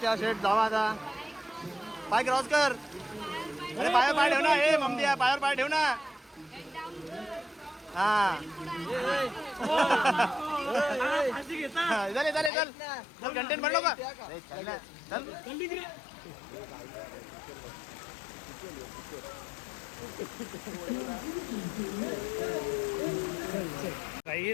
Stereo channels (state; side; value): drops out; right; at 12.5 s